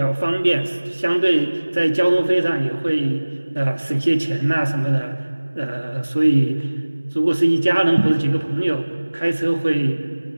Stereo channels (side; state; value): both; inverted; correlation -1.00